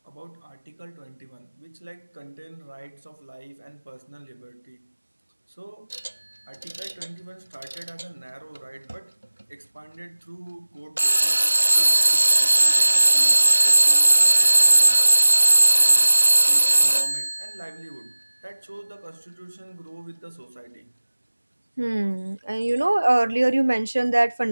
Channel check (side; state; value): both; inverted; correlation -1.00